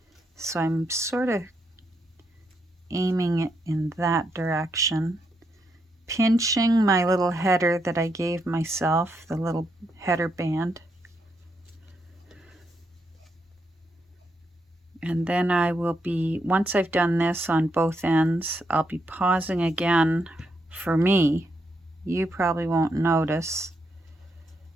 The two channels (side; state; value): both; normal; correlation 0.80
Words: So I'm sort of aiming it in that direction. Pinching my little header that I gave myself, the little header band. And then I will be, once I've done this on both ends, I'll be pausing again for me. You probably won't notice,